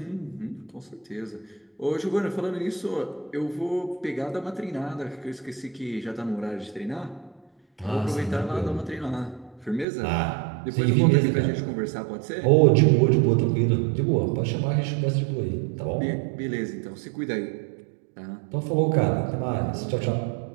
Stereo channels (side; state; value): left; drops out; at 9.9 s